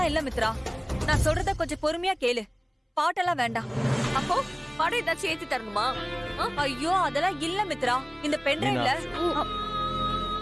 இல்ல மித்ரா, நான் சொல்றத கொஞ்சம் பொறுமையா கேளு. பாட்டெல்லாம் வேண்டாம். அப்போ பாடம் ஏதாச்சும் ஏத்தி தரணுமா? ஐயோ அதெல்லாம் இல்ல மித்ரா. இந்த பென்டிரைவ்ல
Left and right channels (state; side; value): identical; both; correlation 1.00